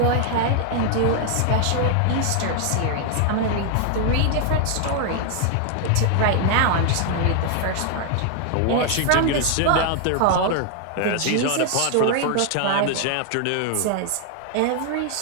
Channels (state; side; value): different; both; correlation 0.00